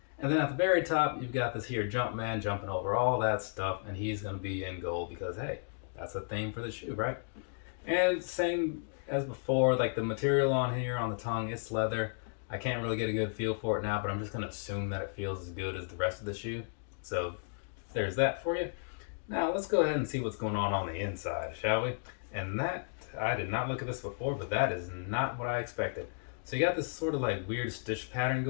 And then at the very top, you've got this here Jumpman jumping over all that stuff, and he's going to be in gold because, hey, that's a theme for the shoe, right? And same as before, like the material on here on the tongue, it's leather. I can't really get a good feel for it now, but I'm just going to assume that it feels as good as the rest of the shoe. So there's that for you. Now let's go ahead and see what's going on the inside, shall we? And that, I did not look at this before, but that is not what I expected. So you got this sort of like weird stitch pattern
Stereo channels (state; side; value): silent; right; digital silence